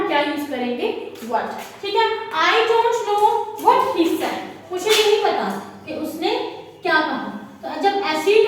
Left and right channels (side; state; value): both; identical; correlation 1.00